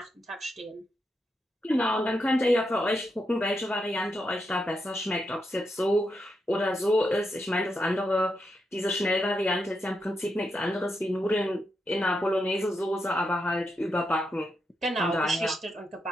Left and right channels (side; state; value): both; normal; correlation 0.84